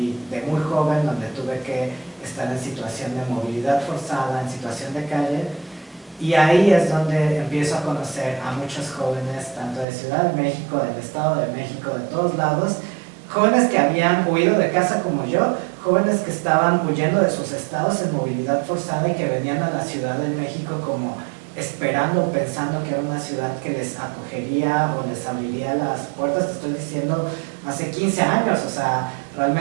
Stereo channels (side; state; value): left; drops out; at 9.9 s